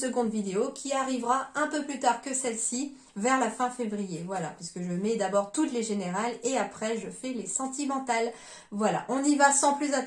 vidéo qui arrivera un peu plus tard que celle-ci, vers la fin février. Voilà, puisque je mets d'abord toutes les générales et après je fais les sentimentales. Voilà, on y va sans plus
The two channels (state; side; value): identical; both; correlation 1.00